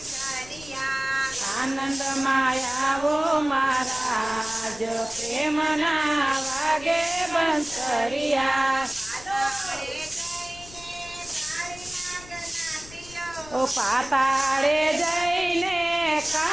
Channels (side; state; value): left; noise; rumble, 18 dB below the sound